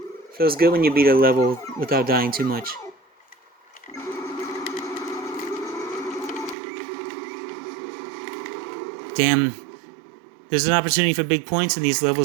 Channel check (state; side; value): drops out; left; at 6.6 s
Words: Feels good when you beat a level without dying too much. Damn. There's an opportunity for big points in these